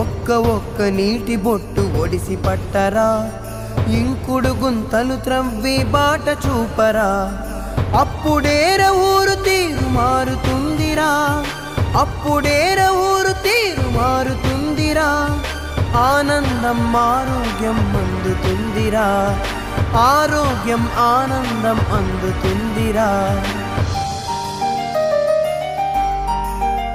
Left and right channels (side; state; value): both; identical; correlation 1.00